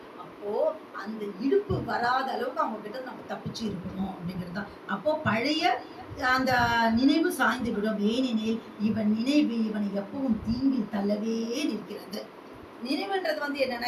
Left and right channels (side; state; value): both; identical; correlation 1.00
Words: அப்போது அந்த இடுப்பு வராத அளவுக்கு அவங்க கிட்ட நம்ம தப்பிச்சு இருக்கணும் அப்படிங்கிறது தான். அப்போது பழைய அந்த நினைவு சாய்ந்து விடும். ஏனெனில் இவன் நினைவு இவனை எப்பவும் தீங்கில் தள்ளவே நிற்கிறது. நினைவுன்றது